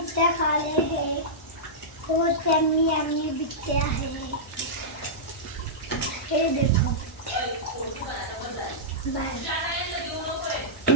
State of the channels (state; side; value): normal; both; correlation -0.13